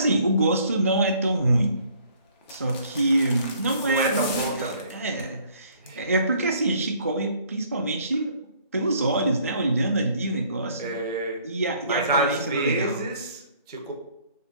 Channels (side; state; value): both; inverted; correlation -0.60